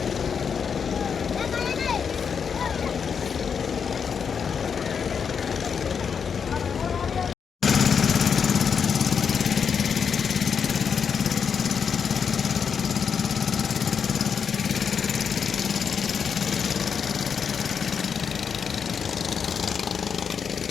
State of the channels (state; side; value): quieter; right; 6.6 dB